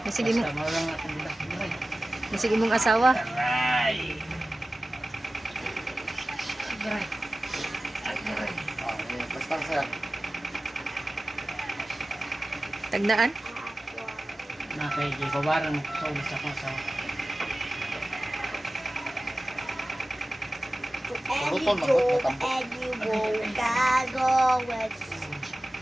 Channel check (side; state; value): both; normal; correlation 0.96